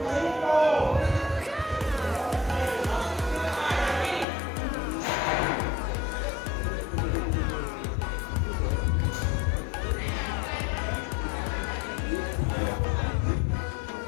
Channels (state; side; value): drops out; right; at 4.2 s